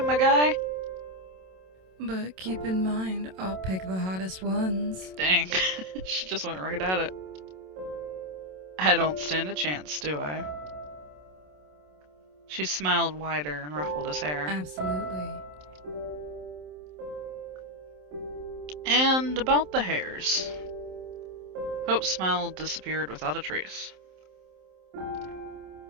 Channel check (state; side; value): late; left; 27 ms